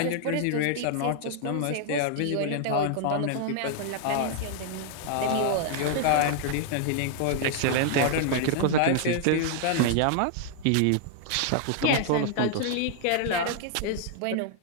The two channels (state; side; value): different; both; correlation 0.00